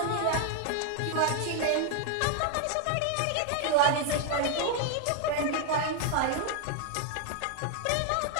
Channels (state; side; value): different; both; correlation 0.00